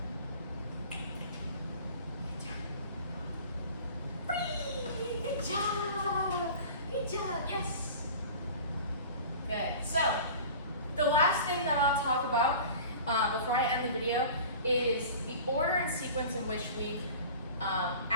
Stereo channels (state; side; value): inverted; both; correlation -0.40